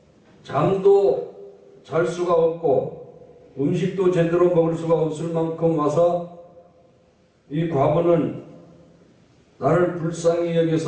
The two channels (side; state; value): both; identical; correlation 1.00